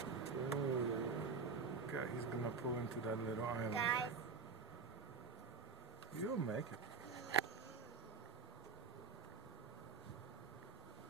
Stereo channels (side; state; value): left; quieter; 4.9 dB